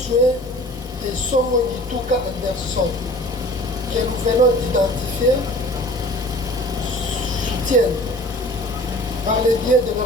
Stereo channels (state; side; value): normal; both; correlation 0.45